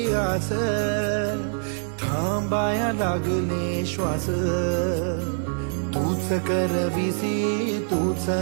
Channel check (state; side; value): silent; left; 62 dB below the other